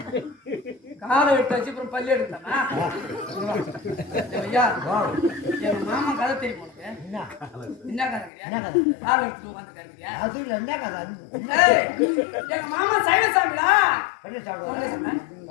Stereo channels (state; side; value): drops out; right; at 8.3 s